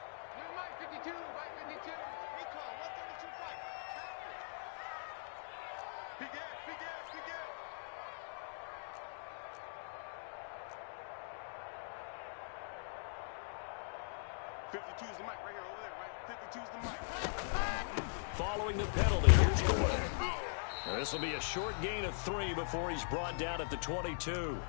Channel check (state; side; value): silent; right; digital silence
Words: 52, Mike 52. Recall, 132 fight. Big ass, big ass, big ass. .52's the mic right here, over there, right? 52's the mic. Following the penalty, here's Gordon. This will be a short gain of 3 before he's brought down at the 22.